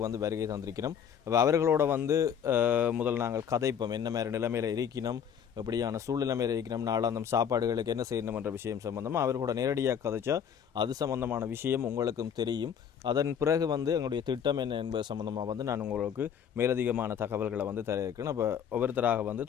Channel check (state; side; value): quieter; right; 8.1 dB